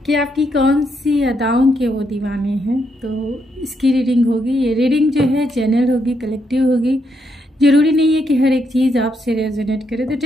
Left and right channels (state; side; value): normal; both; correlation 0.78